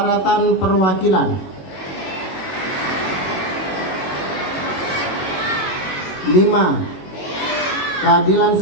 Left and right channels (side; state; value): right; late; 21 ms